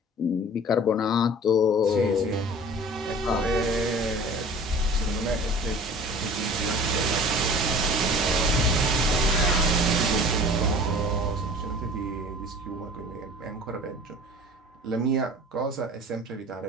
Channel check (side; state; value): both; normal; correlation 0.43